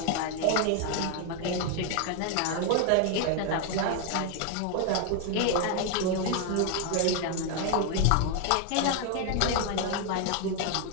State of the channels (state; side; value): different; both; correlation 0.00